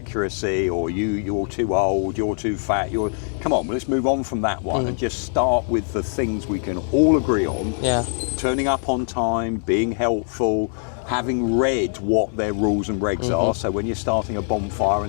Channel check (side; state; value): right; silent; digital silence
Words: or you're too old, you're too fat, come on, let's move on from that one and just start with the things we can all agree on. Yeah. Turning up on time, being helpful, having read what their rules and regs are. So when you're starting a bonfire